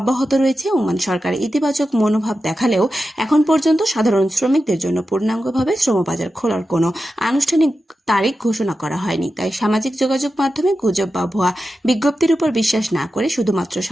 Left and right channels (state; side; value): normal; both; correlation 0.91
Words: রয়েছে। ওমান সরকার ইতিবাচক মনোভাব দেখালেও এখন পর্যন্ত সাধারণ শ্রমিকদের জন্য পূর্ণাঙ্গভাবে শ্রমবাজার খোলার কোনো আনুষ্ঠানিক তারিখ ঘোষণা করা হয়নি। তাই সামাজিক যোগাযোগ মাধ্যমে গুজব বা ভুয়া বিজ্ঞপ্তির উপর বিশ্বাস না করে শুধুমাত্র